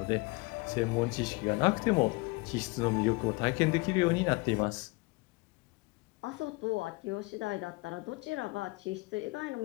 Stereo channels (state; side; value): quieter; right; 25.4 dB